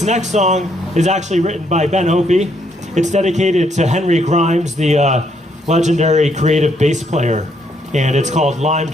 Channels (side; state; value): both; normal; correlation 0.72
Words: next song is actually written by Ben Opie. It's dedicated to Henry Grimes, the legendary creative bass player, and it's called Lime